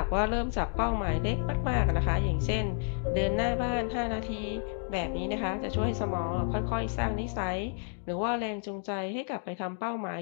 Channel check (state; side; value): silent; right; 57 dB below the other